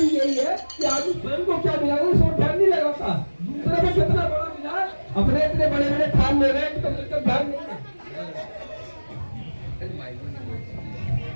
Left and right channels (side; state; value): both; inverted; correlation -1.00